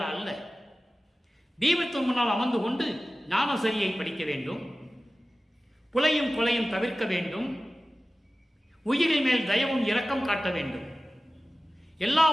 அல்ல. தீபத்தின் முன்னால் அமர்ந்து கொண்டு ஞானசரியை படிக்க வேண்டும், புலையும் கொலையும் தவிர்க்க வேண்டும், உயிரின் மேல் தயவும் இரக்கம் காட்ட வேண்டும், எல்லா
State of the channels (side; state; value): both; normal; correlation 0.96